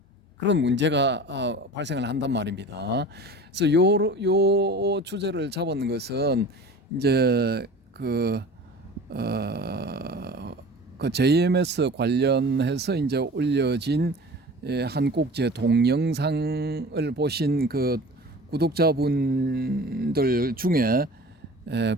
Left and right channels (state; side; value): normal; both; correlation 0.39